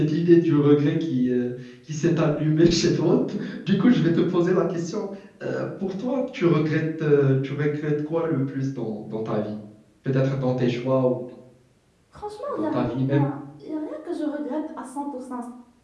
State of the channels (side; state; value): both; identical; correlation 1.00